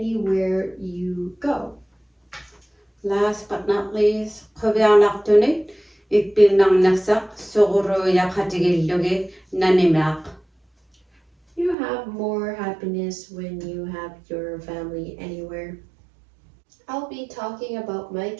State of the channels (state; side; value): drops out; left; at 11.8 s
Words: you go. Last but not least, quviarnartunit ippinnarnersaq suquruiaqatigillugi nanimeaq. You have more happiness when you have your family anywhere. I'll be talking about my